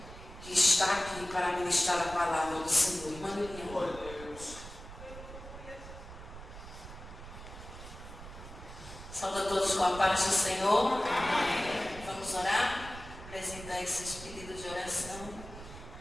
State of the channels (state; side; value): noise; right; rumble, 14 dB below the sound